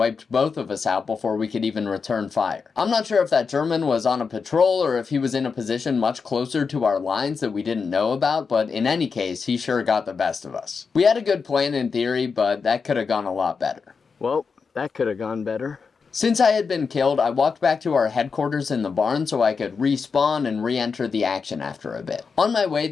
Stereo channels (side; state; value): right; quieter; 5.3 dB